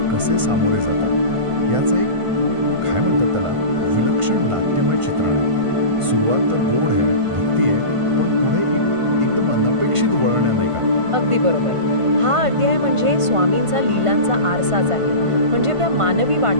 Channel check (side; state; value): left; late; 1.5 ms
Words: कसे सामोरे जातात याचं एक काय म्हणतात त्याला विलक्षण नाट्यमय चित्रण आहे. सुरुवात तर गोड आहे, भक्ती आहे, पण पुढे एकदम अनपेक्षित वळण आहे, नाही का? अगदी बरोबर. हा अध्याय म्हणजे स्वामींचा लीलांचा आरसाच आहे. म्हणजे त्या मानवी